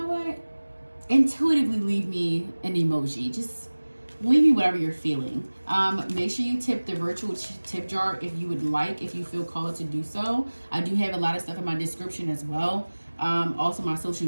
what? Intuitively leave me an emoji. Just leave me whatever you're feeling. Make sure you tip the virtual tip jar if you would like, if you feel called to do so. I do have a lot of stuff in my description as well. Also my social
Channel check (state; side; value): inverted; both; correlation -1.00